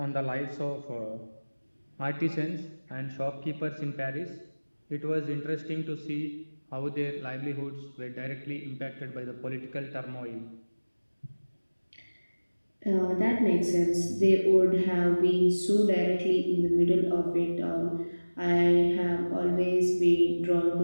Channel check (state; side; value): inverted; both; correlation -1.00